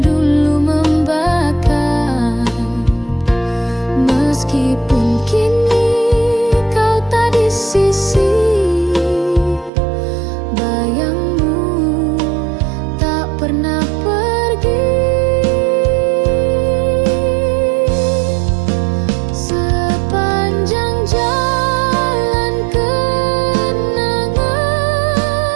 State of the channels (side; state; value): left; drops out; at 9.7 s